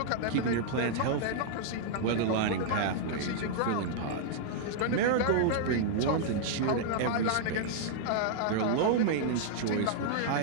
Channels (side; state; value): both; different; correlation -0.01